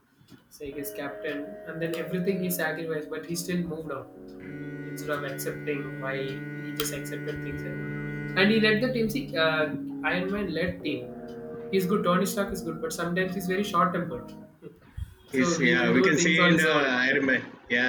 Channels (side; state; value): both; identical; correlation 1.00